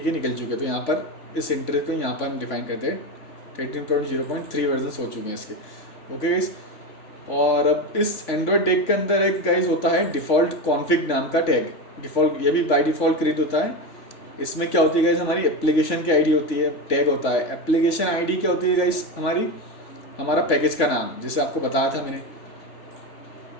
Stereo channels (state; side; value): late; right; 3.5 ms